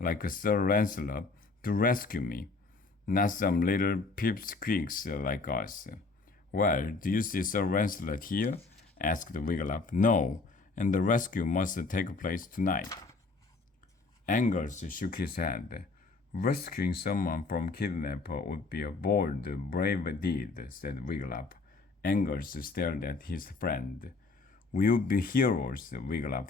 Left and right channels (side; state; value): right; quieter; 3.9 dB